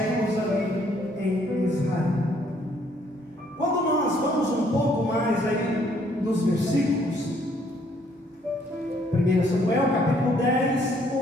ali em Israel. Quando nós vamos um pouco mais aí nos versículos, 1 Samuel capítulo 10,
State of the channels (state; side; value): normal; both; correlation 0.66